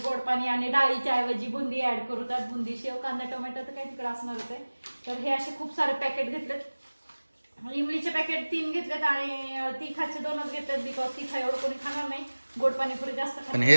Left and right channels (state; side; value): inverted; both; correlation -1.00